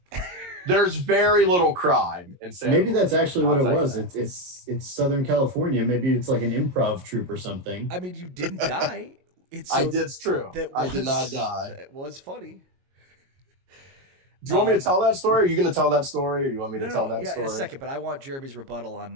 There's very little crime in Santa Maybe that's actually what it was. that. It's Southern California. Maybe it's like an improv troupe or something. I mean, you didn't die. It's true. I did not die. It was funny. Do you want me to tell that story? Are you going to tell that story, or do you want me to tell that story? In a second, but I want Jeremy's rebuttal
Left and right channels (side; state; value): left; late; 22 ms